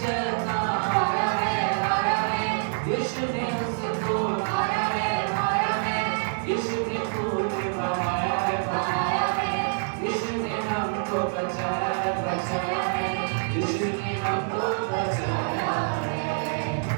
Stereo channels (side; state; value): left; silent; 61 dB below the other